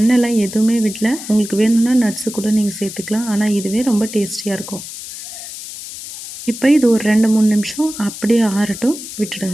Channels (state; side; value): noise; left; hiss, 11 dB below the sound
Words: எதுவுமே விடல. உங்களுக்கு வேணும்னா நட்ஸு கூட நீங்கள் சேர்த்துக்கலாம். ஆனால் இதுவே ரொம்ப டேஸ்டியாக இருக்கும். இப்போ இது ஒரு 2-3 நிமிஷம் அப்படியே ஆறட்டும்,